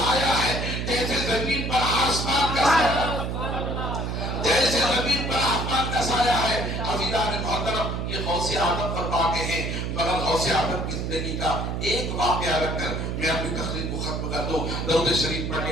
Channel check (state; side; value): noise; right; hum, 2 dB below the sound